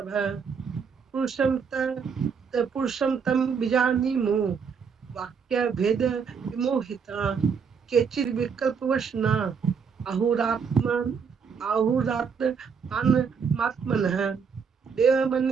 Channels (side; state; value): left; quieter; 6.2 dB